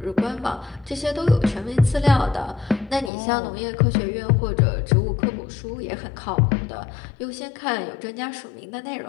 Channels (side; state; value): right; drops out; at 3.1 s